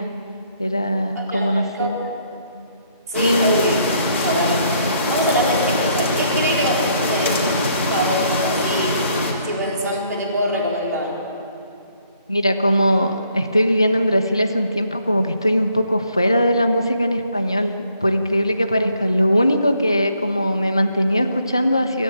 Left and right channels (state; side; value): inverted; both; correlation -0.69